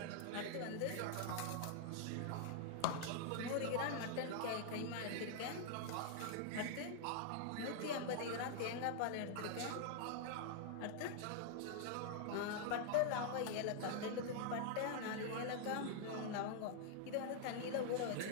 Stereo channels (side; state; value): both; different; correlation -0.01